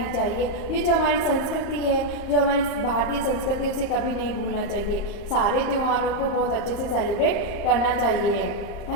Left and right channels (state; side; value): late; right; 35 ms